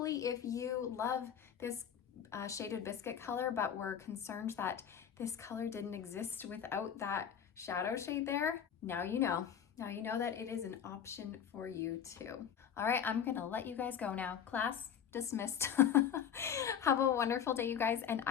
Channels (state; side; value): quieter; right; 8.5 dB